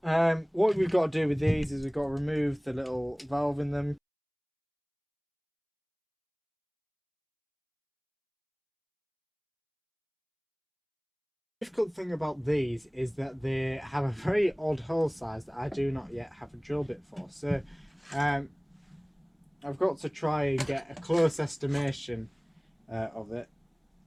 what we've got to do with these is we've got to remove the little valve in them. The difficult thing about these is that they have a very odd hole size that I do not yet have a drill bit for. So I've got to try and get a close estimation of it.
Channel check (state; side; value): identical; both; correlation 1.00